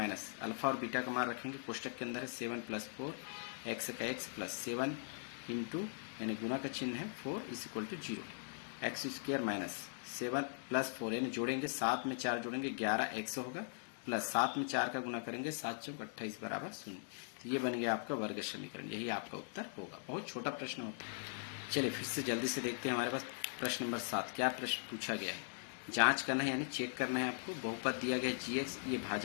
- अल्फा और बीटा का मान रखेंगे। कोष्टक के अंदर है 7 + 4 x का x + 7 × यानी गुना का चिन्ह है 4 = 0, x² - 7 + 4 यानी जोड़ेंगे, 7 में 4 जोड़ेंगे 11x होगा, प्लस 7 में 4 का गुना करेंगे 7 × 28 बराबर 0। तो ये बन गया आपका वर्ग समीकरण, यही आपका उत्तर होगा। बहुत छोटा प्रश्न होता है। चलिए फिर से जल्दी से देखते हैं, हमारे पास प्रश्न नंबर 7 क्या प्रश्न पूछा गया है। जांच करना है यानी चेक करना है आपको। बहुपद दिया गया gx, ये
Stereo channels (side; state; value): right; silent; digital silence